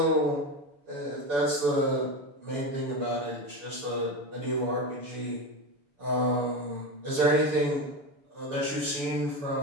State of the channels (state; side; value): late; left; 6.9 ms